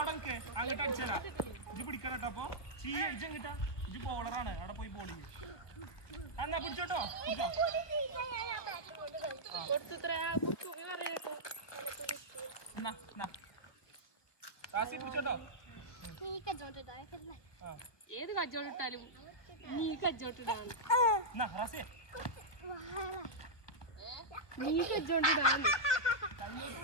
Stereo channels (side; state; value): right; late; 1.3 ms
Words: നിൽക്ക്, അങ്ങോട്ട് അടിച്ചേരാ. ഇജ് പിടിക്കണം കേട്ടോ. അപ്പൊ ഇജ് എങ്ങിട്ടാ? ഇജ് ബോളറാണ്, അവിടെ പോയി ബോൾ ചെയ്യും. എന്നാ പിടിച്ചോട്ടോ. റാസി പിടിച്ചോട്ടോ. ഏത് കച്ചോട്ടിട്ടാലും നീ കച്ചോട്ടിടാണ്. റാസി നീ കച്ചോട്ടിടാണ്.